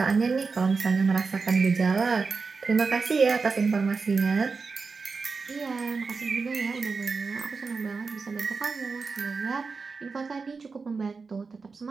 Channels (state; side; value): quieter; left; 4.6 dB